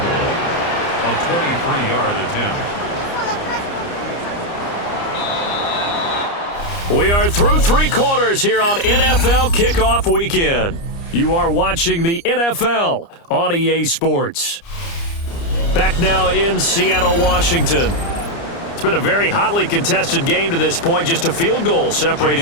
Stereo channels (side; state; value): right; late; 29 ms